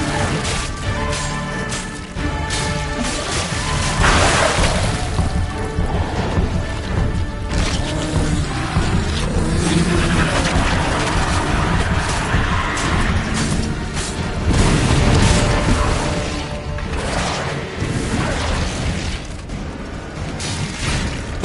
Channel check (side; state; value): both; identical; correlation 1.00